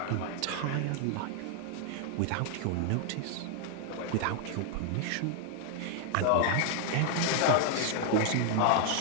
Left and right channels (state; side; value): different; both; correlation 0.00